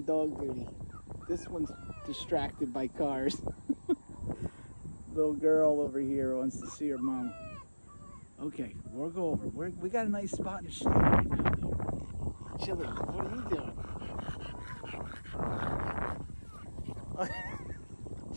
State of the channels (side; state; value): both; inverted; correlation -1.00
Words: dog duty. This one's distracted by cars. Little girl over here wants to see her mom. Okay, we'll go over. We got a nice spot in the shade right now, though. Chili, what are you doing?